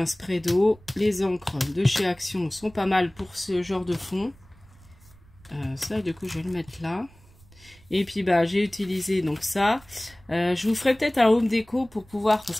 spray d'eau. Les encres de chez Action sont pas mal pour ce genre de fond. Ça, du coup, je vais le mettre là. Et puis, j'ai utilisé donc ça. Je vous ferai peut-être un home déco pour pouvoir... Parce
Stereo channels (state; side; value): noise; right; rumble, 26 dB below the sound